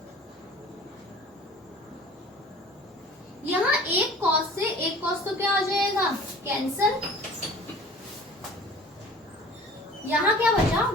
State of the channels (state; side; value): normal; both; correlation 0.45